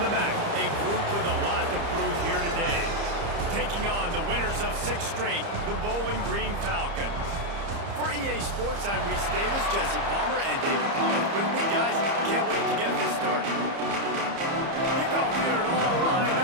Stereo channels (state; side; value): late; left; 30 ms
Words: back, a group with a lot to prove here today. Taking on the winners of 6 straight, the Bowling Green Falcons. For EA Sports, I'm Reese Davis, Jesse Palmer, and David Palmer with me, guys. Can't wait to get this started. Kickoff here and all lined